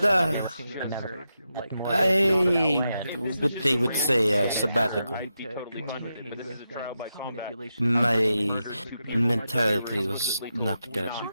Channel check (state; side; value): inverted; both; correlation -0.87